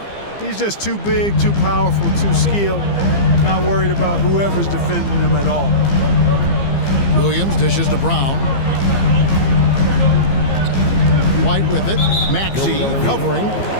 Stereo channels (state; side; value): late; right; 15 ms